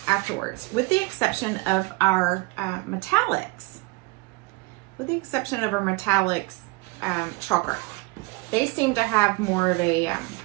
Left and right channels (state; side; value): quieter; left; 25.0 dB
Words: afterwards, with the exception of our metallics. With the exception of our metallics chalk art. They seem to have more of a